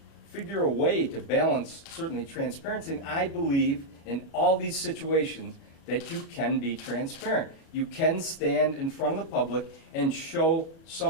figure a way to balance certainly transparency, and I believe in all these situations that you can be transparent. You can stand in front of the public and show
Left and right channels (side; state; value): right; late; 36 ms